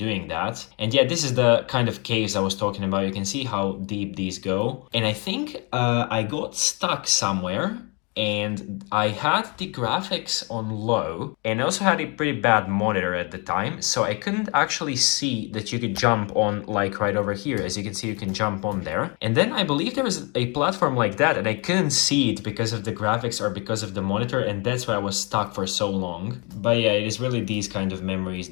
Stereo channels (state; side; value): quieter; right; 31.7 dB